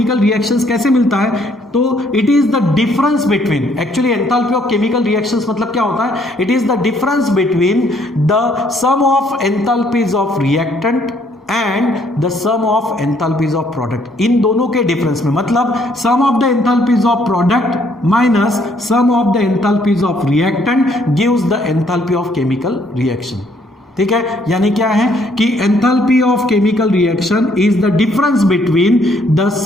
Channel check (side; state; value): both; normal; correlation 0.67